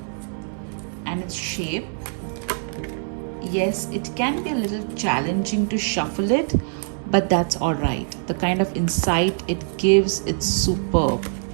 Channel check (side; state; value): left; silent; 63 dB below the other